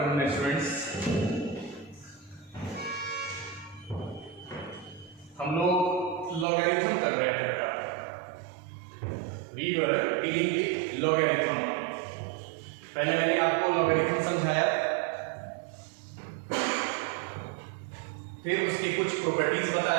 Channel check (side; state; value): left; drops out; at 6.5 s